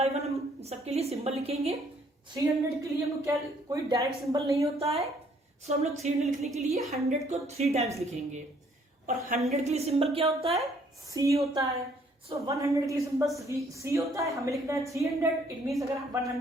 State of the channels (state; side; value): normal; both; correlation 0.64